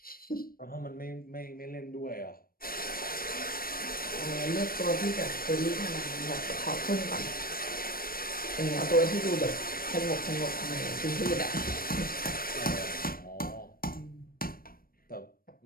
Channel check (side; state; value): right; late; 0.43 ms